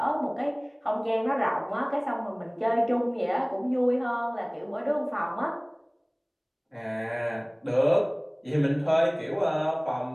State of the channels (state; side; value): identical; both; correlation 1.00